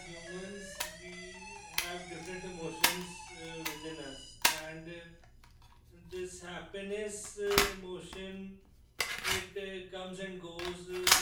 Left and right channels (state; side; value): identical; both; correlation 1.00